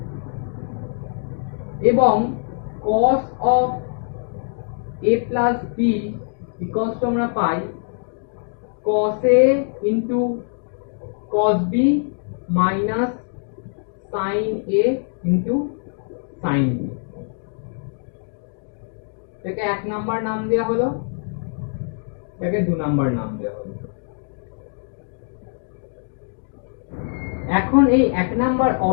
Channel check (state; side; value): silent; right; digital silence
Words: এবং cos of a plus b equals to আমরা পাই cos a into cos b minus sin a into sin b। এটাকে 1 number নাম দেওয়া হলো, এটাকে 2 number নাম দেওয়া হলো। এখন এই 1 নাম্বার